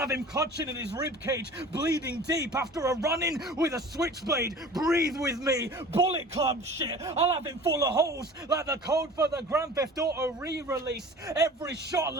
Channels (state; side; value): normal; both; correlation 0.42